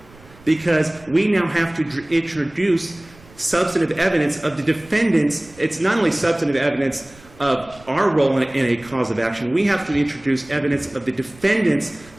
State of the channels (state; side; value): noise; right; rumble, 24 dB below the sound